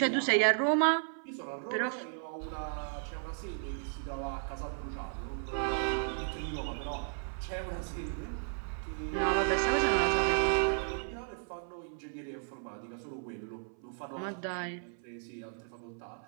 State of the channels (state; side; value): silent; left; 55 dB below the other